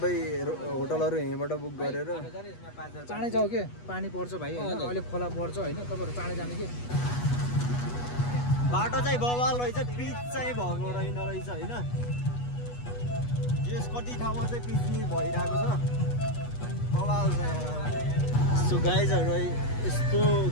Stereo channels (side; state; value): right; late; 8.2 ms